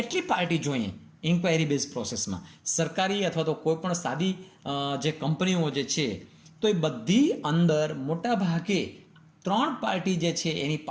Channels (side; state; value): both; identical; correlation 1.00